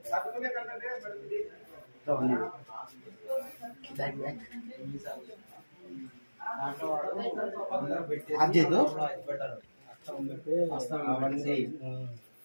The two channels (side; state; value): both; inverted; correlation -1.00